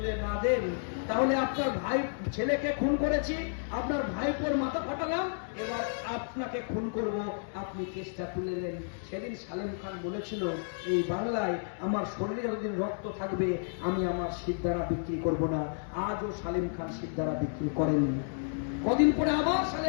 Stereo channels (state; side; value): silent; right; digital silence